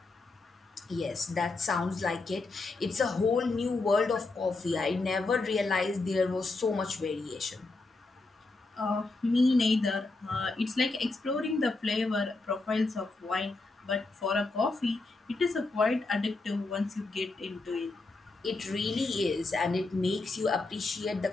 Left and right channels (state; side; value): quieter; right; 3.4 dB